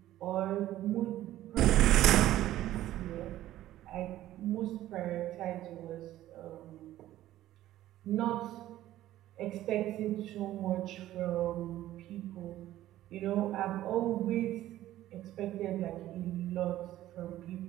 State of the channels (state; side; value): quieter; left; 14.1 dB